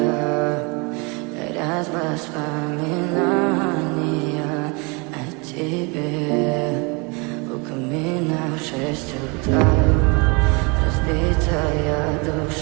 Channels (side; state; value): left; quieter; 30.2 dB